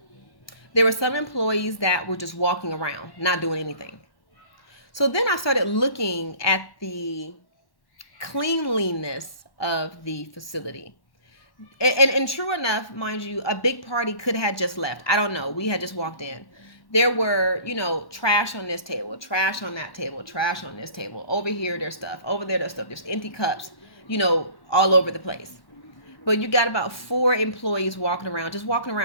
There were some employees that were just walking around, not doing anything. So then I started looking at the cleanliness of the facility. And true enough, mind you, a big party could have just left. I don't know. We had just walked in. There were, trash on this table, trash on that table, trash on this table. Over here, there's stuff. Over there, there's stuff. There's empty cups, all over the place. But you got about 4 employees walking around, just walking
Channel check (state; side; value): late; right; 1.1 ms